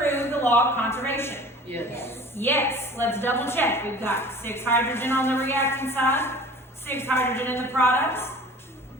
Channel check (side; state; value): both; normal; correlation 0.44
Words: the law of conservation? Yes. Yes. Let's double check. We've got 6 hydrogen on the reactant side, 6 hydrogen in the products,